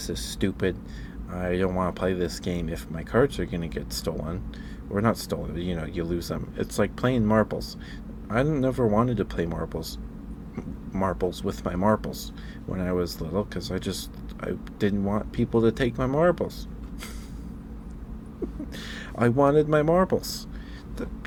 is stupid. I don't want to play this game if my cards are gonna get stolen, or not stolen. You know, you lose them. It's like playing marbles. I never wanted to play marbles with my marbles when I was little because I didn't want people to take my marbles. I wanted my marbles.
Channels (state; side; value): identical; both; correlation 1.00